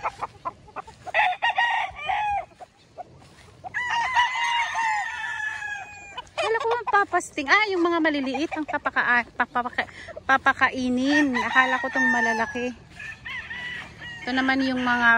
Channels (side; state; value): both; identical; correlation 1.00